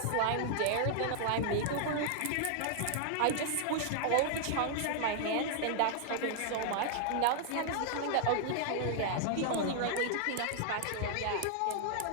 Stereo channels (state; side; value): different; both; correlation 0.00